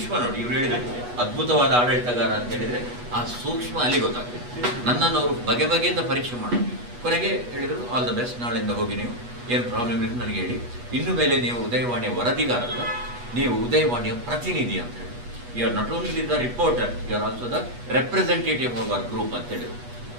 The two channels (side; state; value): left; late; 8.2 ms